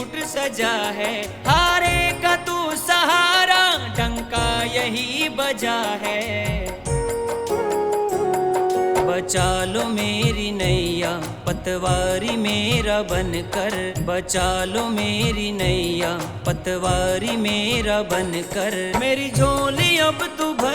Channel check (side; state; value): both; identical; correlation 1.00